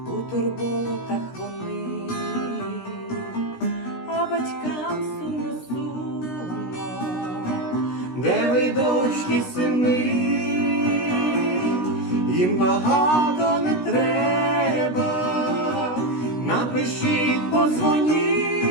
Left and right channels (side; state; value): right; late; 16 ms